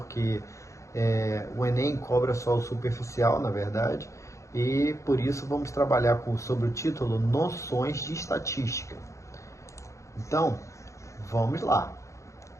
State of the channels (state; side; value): late; right; 0.15 ms